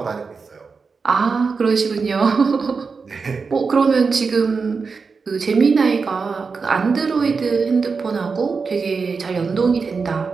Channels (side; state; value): left; quieter; 4.9 dB